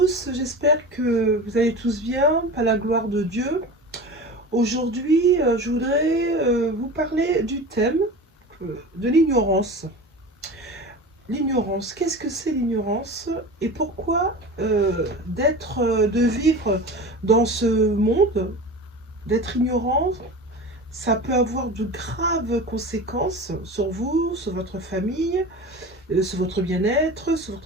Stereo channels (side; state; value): both; normal; correlation 0.32